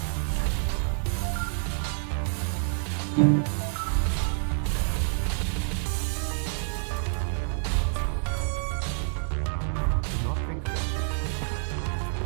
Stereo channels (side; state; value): left; silent; 59 dB below the other